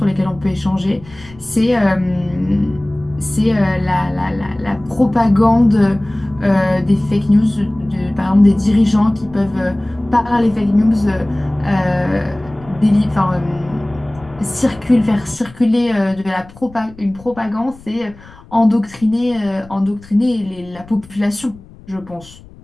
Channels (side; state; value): left; noise; rumble, 22 dB below the sound